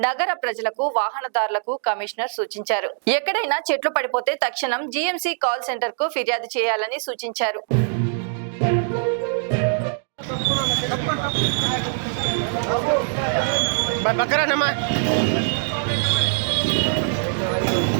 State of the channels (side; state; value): left; silent; 64 dB below the other